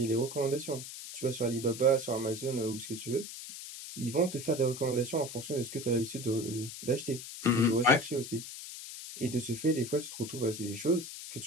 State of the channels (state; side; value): noise; left; hiss, 10 dB below the sound